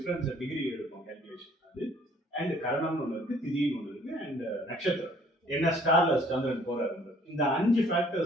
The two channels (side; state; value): both; normal; correlation 0.58